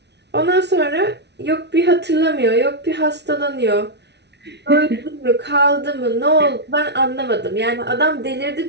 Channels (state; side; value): late; left; 0.50 ms